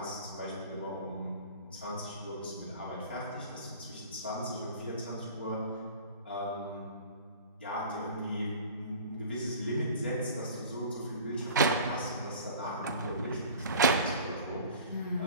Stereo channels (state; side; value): inverted; both; correlation -0.42